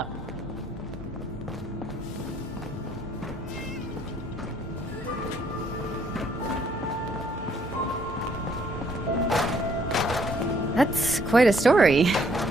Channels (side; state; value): both; normal; correlation 0.65